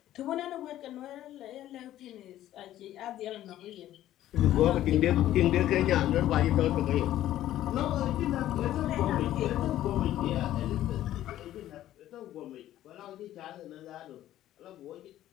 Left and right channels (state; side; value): quieter; right; 13.2 dB